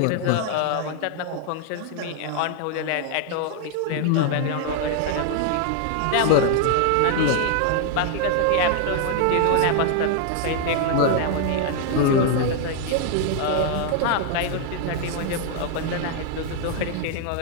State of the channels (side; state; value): both; different; correlation 0.00